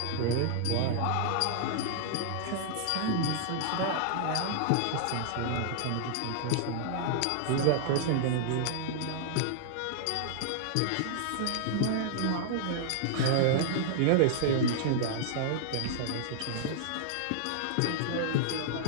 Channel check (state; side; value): different; both; correlation -0.01